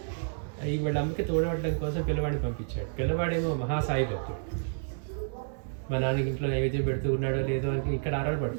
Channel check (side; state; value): left; silent; 58 dB below the other